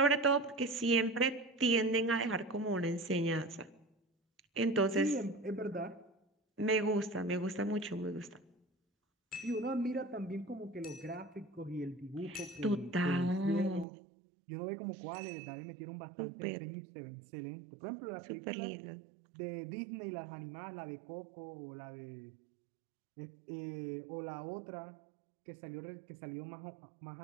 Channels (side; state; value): left; drops out; at 13.9 s